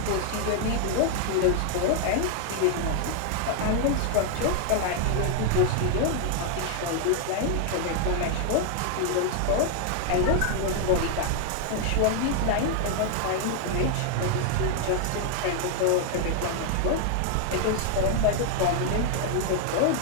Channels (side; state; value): both; different; correlation 0.00